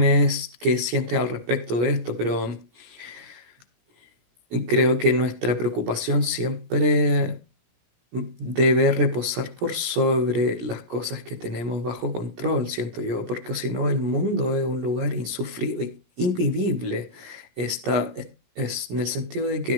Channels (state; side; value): late; left; 17 ms